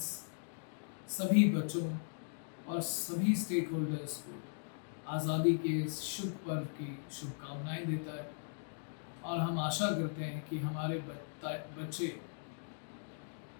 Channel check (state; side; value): silent; right; digital silence